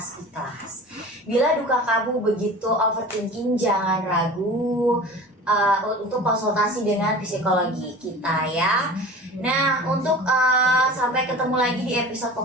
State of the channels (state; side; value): normal; both; correlation 0.38